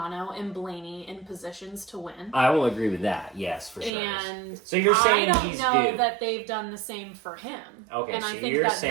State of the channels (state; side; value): drops out; left; at 3.9 s